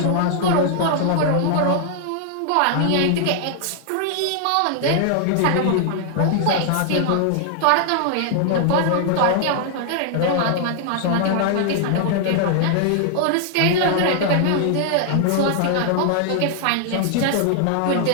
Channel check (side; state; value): both; different; correlation 0.00